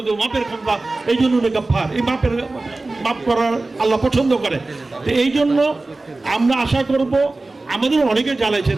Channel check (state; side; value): quieter; left; 3.2 dB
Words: দেবো, মাপের ক্ষমতা। এই জন্য গাফফার, এই মাফ করার আল্লাহ পছন্দ করে। তো এই জন্য আমরা আশা করব, আমাদের অনেকে জ্বালাইছেন,